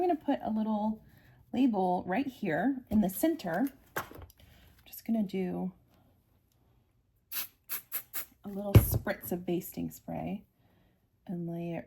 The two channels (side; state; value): both; identical; correlation 1.00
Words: to put a little label right here in the center. I'm just going to do a little spritz of basting spray and lay